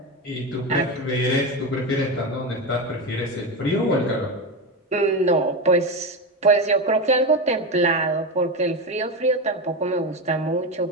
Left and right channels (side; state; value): both; normal; correlation 0.17